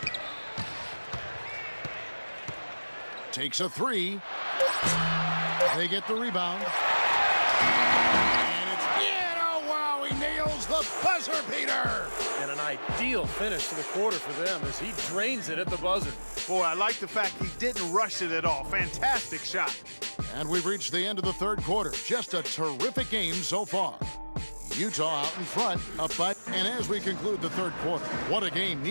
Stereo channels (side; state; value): both; inverted; correlation -1.00